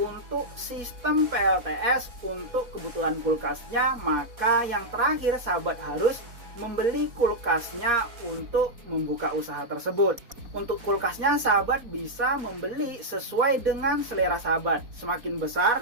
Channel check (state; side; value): late; left; 4.2 ms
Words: sistem PLTS untuk kebutuhan kulkasnya, maka yang terakhir sahabat harus membeli kulkasnya untuk membuka usaha tersebut. Untuk kulkasnya sahabat bisa membeli sesuai dengan selera sahabat. Semakin